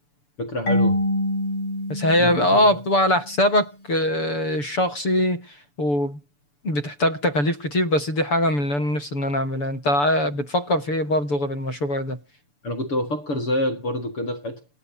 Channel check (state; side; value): late; right; 6.9 ms